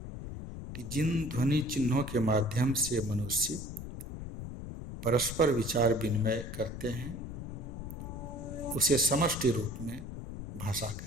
कि जिन ध्वनि चिन्हों के माध्यम से मनुष्य परस्पर विचार विनिमय करते हैं उसे समष्टि रूप में भाषा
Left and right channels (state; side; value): noise; left; rumble, 8 dB below the sound